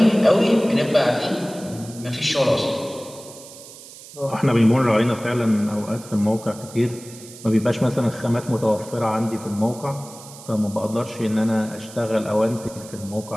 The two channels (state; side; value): noise; right; hiss, 17 dB below the sound